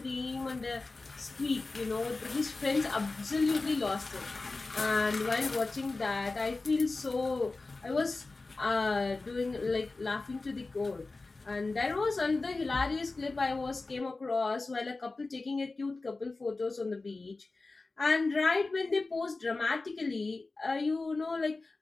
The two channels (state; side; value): quieter; right; 3.5 dB